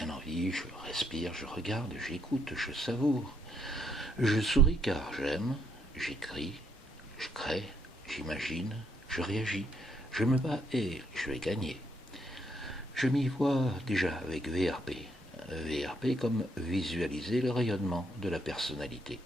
en vie, je respire, je regarde, j'écoute, je savoure. Je souris car j'aime, j'écris, je crée, j'imagine, je réagis, je me bats et je vais gagner. Je m'y vois déjà avec VRP. VRP comme visualiser le rayonnement de la personnalité.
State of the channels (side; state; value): both; normal; correlation 0.73